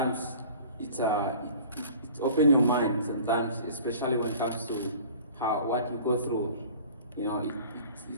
it opens your mind sometimes, especially when it comes to what you go through, it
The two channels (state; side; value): inverted; both; correlation -0.45